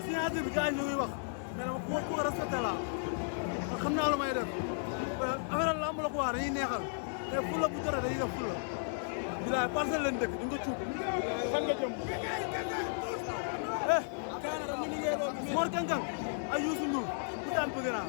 signature bi gars yi ñu ngi wax mais dama ku ko respecté laa man xam naa lu may def affaire lamb la ko wax dañuy neexal te fulla bu jotee dañuy def fulla bilaay parcelle leen dëkk di nga cuub fan nga jëm Mor Kang Kang ay Youssou Ndour ku daan bëgg naa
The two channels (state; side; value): silent; right; digital silence